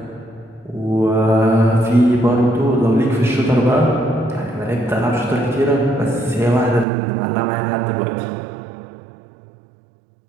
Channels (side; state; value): left; drops out; at 6.9 s